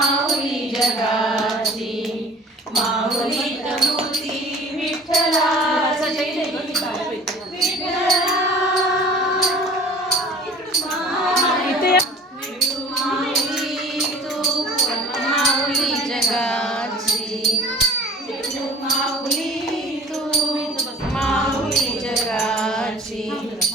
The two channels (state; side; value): normal; both; correlation 0.45